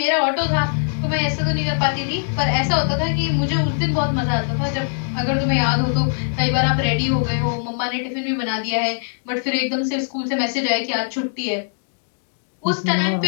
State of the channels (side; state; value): right; silent; digital silence